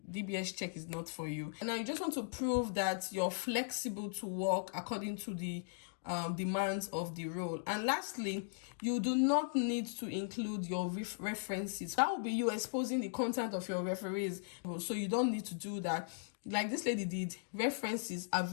DBS check is not for you. And now you just want to prove that you're flexible to work according to the demands of the role. And lastly, you do not need to include your references. That will be you exposing the content of your referees, so you don't need to do that. Like this lady did, references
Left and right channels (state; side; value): silent; right; digital silence